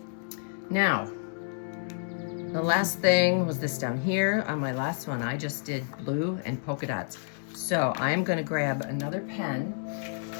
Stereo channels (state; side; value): silent; right; digital silence